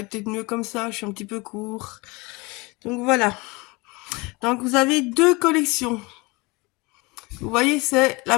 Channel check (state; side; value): quieter; right; 25.4 dB